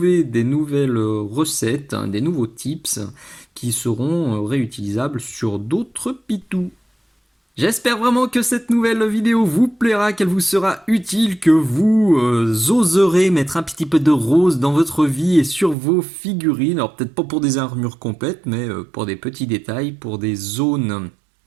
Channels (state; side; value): drops out; left; at 15.8 s